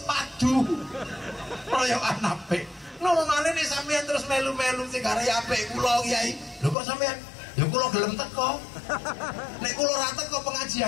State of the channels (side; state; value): right; drops out; at 6.8 s